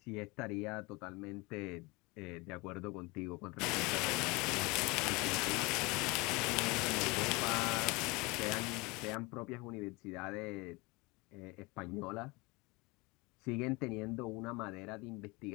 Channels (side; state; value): right; quieter; 25.4 dB